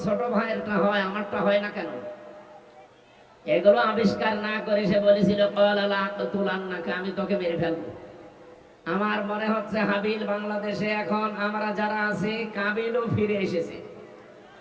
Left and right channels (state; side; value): identical; both; correlation 1.00